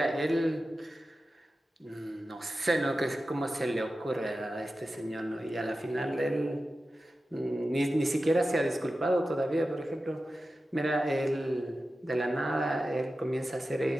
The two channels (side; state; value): both; normal; correlation 0.93